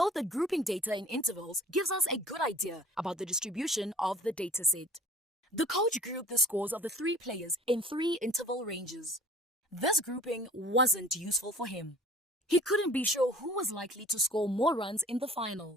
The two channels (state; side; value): normal; both; correlation 0.48